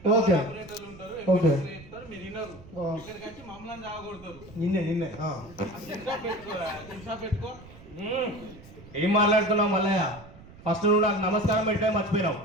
ఓకే. ఆపరేటర్లు ఉంటారు. ఓకే. ఎప్పుడు చెప్తారు, మీరు వినరు. ఆ. ఇక్కడికి వచ్చి మమ్మల్ని జాగొడతారు. నిన్నే చిన్సా పెట్టుకో. ఏం మాట్లాడుతున్నావు మల్లయ్య? ఫస్ట్ నువ్వు నాకు నమస్కారం పెట్టే మర్చిపోయినావు.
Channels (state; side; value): noise; right; rumble, 20 dB below the sound